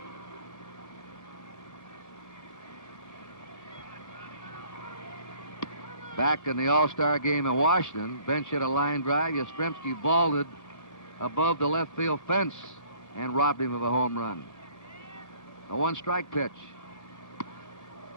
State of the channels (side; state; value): right; late; 1.7 ms